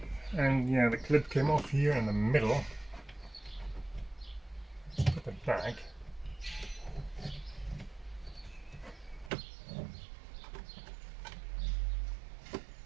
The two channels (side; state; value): left; drops out; at 9.3 s